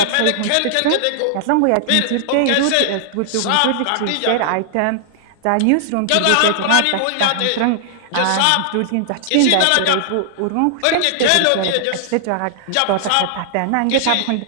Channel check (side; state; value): both; different; correlation -0.01